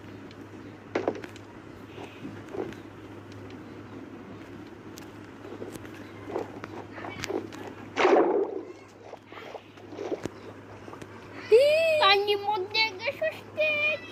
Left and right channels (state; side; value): identical; both; correlation 1.00